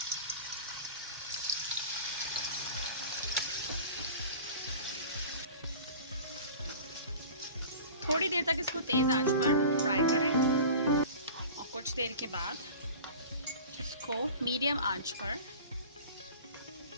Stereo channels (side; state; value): both; inverted; correlation -0.38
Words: थोड़ी देर तक इसको तेज आंच पर फ्राई करें और कुछ देर के बाद इसको मीडियम आंच पर